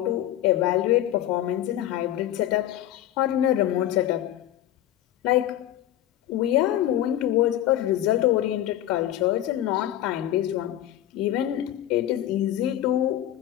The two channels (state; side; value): quieter; right; 12.7 dB